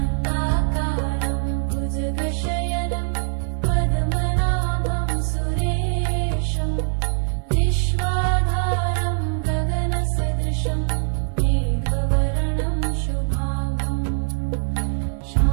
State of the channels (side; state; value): left; silent; 64 dB below the other